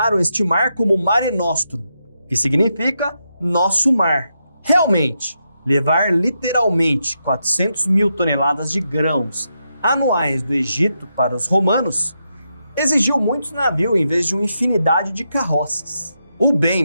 este mar como Mare Nostrum, que significa nosso mar. Realmente, levar literalmente 400 mil toneladas de grãos anuais do Egito para os romanos exigiu muitos navios em vez de uma infinidade de carroças. O bem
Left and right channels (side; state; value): both; inverted; correlation -0.84